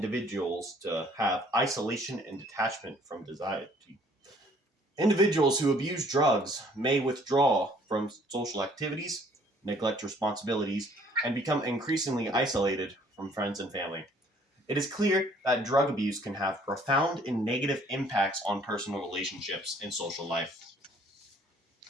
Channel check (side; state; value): both; normal; correlation 0.59